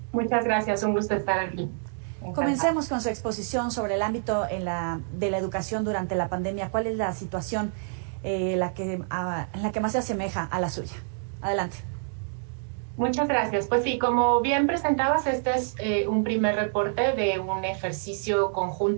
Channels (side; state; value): left; silent; digital silence